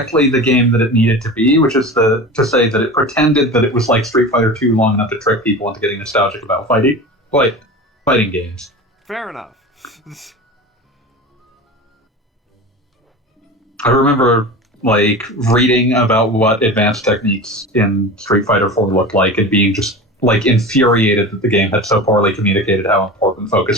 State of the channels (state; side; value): normal; both; correlation 0.32